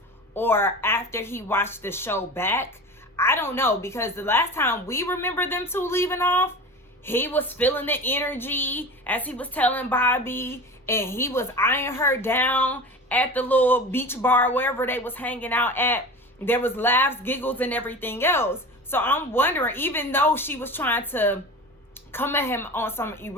or after he watched the show back. I don't know, because the last time we remember them two leaving off, he was feeling the energy as he was telling Bobby, and he was eyeing her down at the little beach bar, wherever they was hanging out at. There was laughs, giggles, and everything else. So I'm wondering, even though she was trying to come at him on some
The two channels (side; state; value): both; normal; correlation 0.33